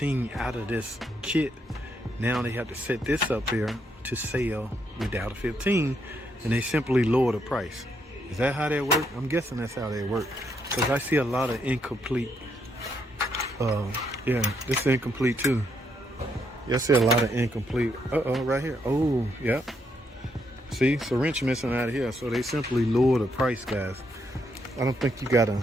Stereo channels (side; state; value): both; normal; correlation 0.76